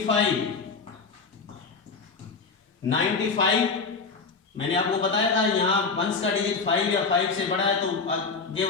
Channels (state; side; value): quieter; right; 4.6 dB